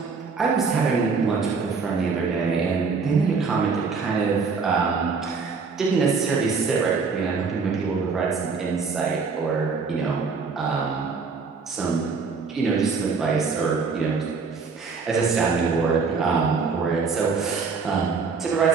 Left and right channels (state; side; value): quieter; left; 4.9 dB